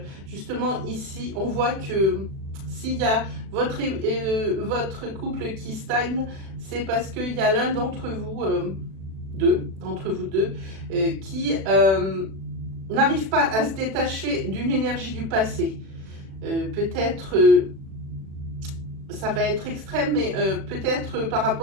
Justement ici on voit que s'il y a votre couple qui stagne, c'est parce qu'il y a l'un d'entre vous, deux, qui n'arrive pas à se détacher d'une énergie du passé. Peut-être, ça va être extrême, mais peut-être par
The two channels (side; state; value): left; late; 36 ms